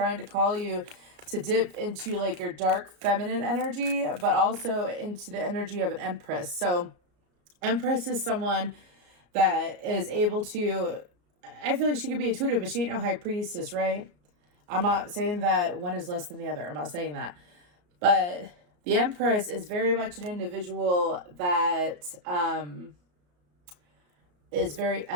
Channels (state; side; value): late; left; 34 ms